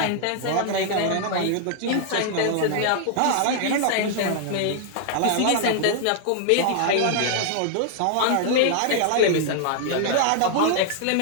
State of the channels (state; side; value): different; both; correlation 0.00